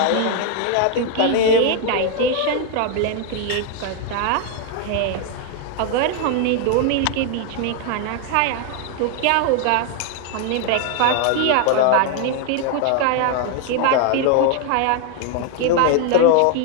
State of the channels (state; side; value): different; both; correlation 0.01